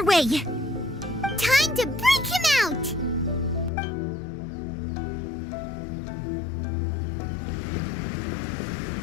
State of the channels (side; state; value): right; drops out; at 3.7 s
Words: way. Time to break him out.